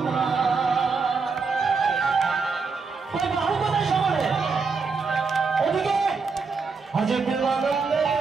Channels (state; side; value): quieter; left; 4.8 dB